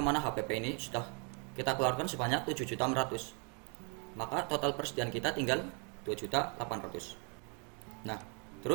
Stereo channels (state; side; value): quieter; left; 36.0 dB